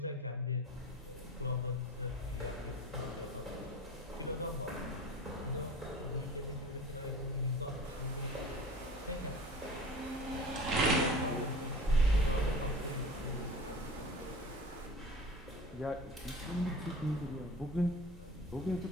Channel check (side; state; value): both; normal; correlation 0.37